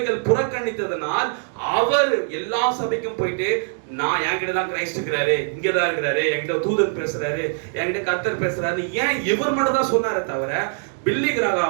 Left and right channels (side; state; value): left; silent; digital silence